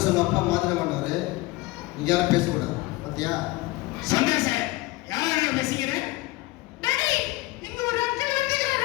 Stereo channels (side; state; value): right; quieter; 20.2 dB